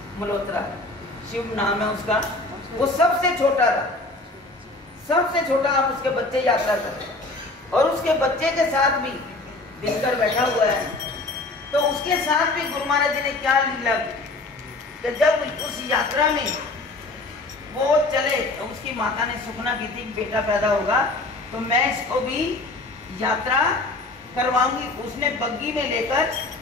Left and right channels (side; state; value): right; quieter; 3.0 dB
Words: मल्होत्रा शिव नाम है उसका, वो सबसे छोटा था, सबसे छोटा। आप उसके बच्चे यात्रा करते और उसके बच्चे के साथ भी दिनकर बैठा हुआ है। तो उसके साथ भी गुरु महाराज जी ने क्या लीला की कि जब उस यात्रा में वो चले तो उसकी माता ने सुखना की थी बेटा पैदा होगा तो मैं इसको भी यात्रा करवाऊंगी। उसने बग्गी में लेकर